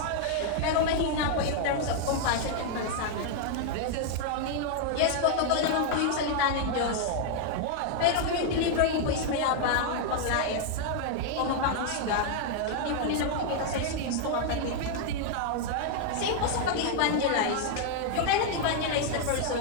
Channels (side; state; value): both; different; correlation 0.00